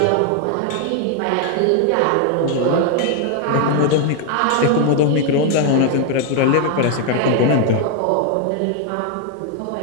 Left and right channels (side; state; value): both; different; correlation 0.01